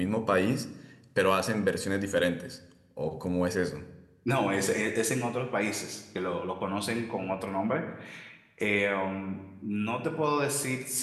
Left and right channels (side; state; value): both; identical; correlation 1.00